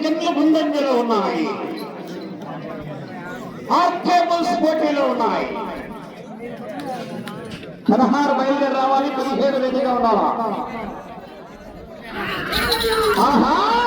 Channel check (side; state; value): both; identical; correlation 1.00